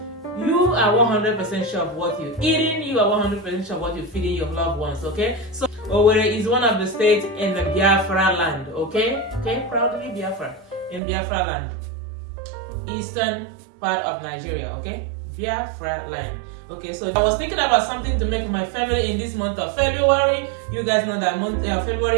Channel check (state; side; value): drops out; left; at 11.0 s